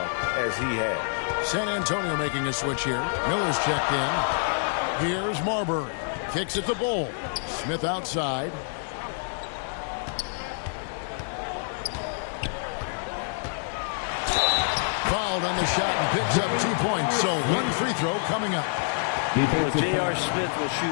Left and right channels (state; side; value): silent; right; 60 dB below the other